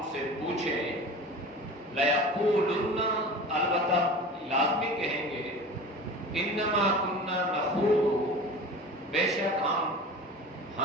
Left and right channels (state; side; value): normal; both; correlation 0.36